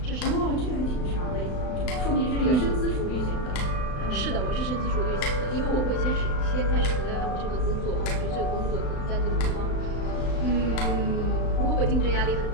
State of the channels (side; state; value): right; late; 35 ms